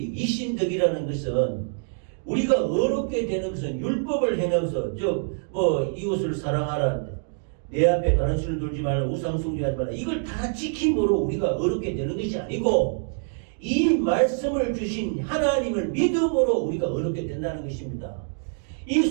이신덕이라는 것은 우리가 어렵게 되는 것은 율법을 행하면서 즉 이웃을 사랑하라, 내 앞에 다른 신을 두지 말라, 우상 숭배하지 말라, 이걸 다 지킴으로 우리가 어렵게 되는 것이 아니고 이 말씀을 주신 하나님을 믿음으로 우리가 어렵게 된다는 것입니다. 이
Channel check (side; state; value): left; silent; 61 dB below the other